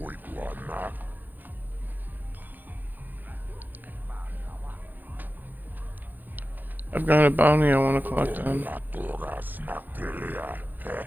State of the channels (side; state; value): left; late; 0.090 ms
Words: I've got a bounty I want to collect on.